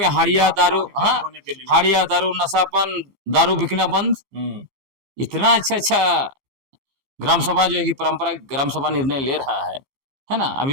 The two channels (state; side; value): late; left; 15 ms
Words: हाड़िया दारू, हाँ, हाड़िया दारू, नशापन, दारू बिकना बंद। इतना अच्छा अच्छा ग्राम सभा जो है कि परंपरागत ग्राम सभा निर्णय ले रहा है ना। अभी